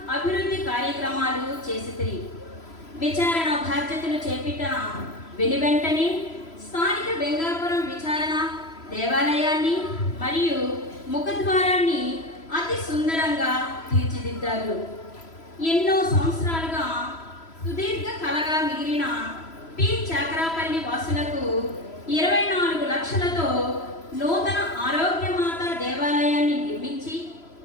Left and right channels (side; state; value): right; late; 3.0 ms